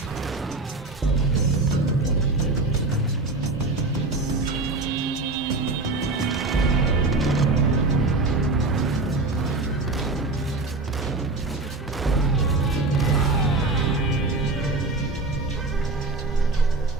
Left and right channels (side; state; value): left; quieter; 3.2 dB